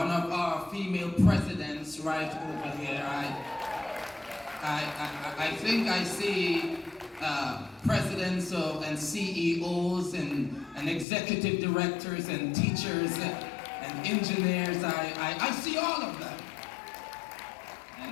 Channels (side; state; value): right; drops out; at 11.1 s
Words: of our female presidents right over here. I think I see presidents and CEOs and executive directors and teachers and engineers. I see all of them.